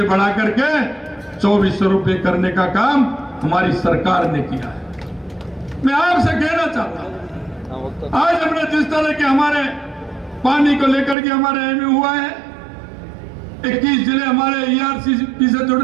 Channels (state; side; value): drops out; left; at 11.2 s